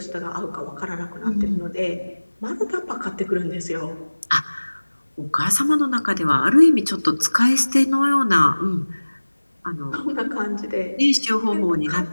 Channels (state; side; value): inverted; both; correlation -1.00